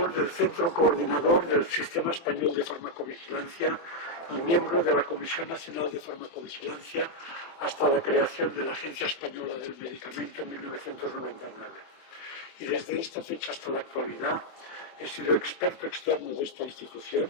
del Centro Coordinador del Sistema Español de Farmacovigilancia y miembro de la Comisión Nacional de Farmacovigilancia hasta la creación de la Agencia Española del Medicamento en 1999. Y desde esta fecha hasta la actualidad he sido experto externo de esta institución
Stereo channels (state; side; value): late; right; 24 ms